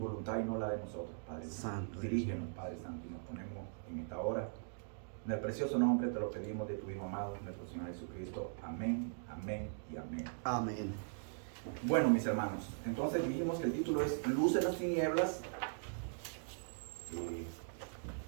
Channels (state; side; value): silent; left; digital silence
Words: y no la de nosotros, Padre Santo. Dirígenos, Padre Santo, y nos ponemos en esta hora. En el precioso nombre te lo pedimos de tu Hijo amado, nuestro Señor Jesucristo. Amén, amén y amén. Amén. Bueno, mis hermanos, entonces dijimos que el título es Luz en las tinieblas.